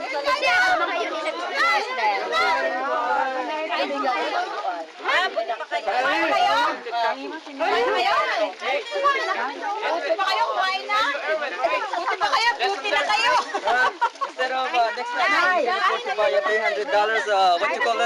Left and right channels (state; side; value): identical; both; correlation 1.00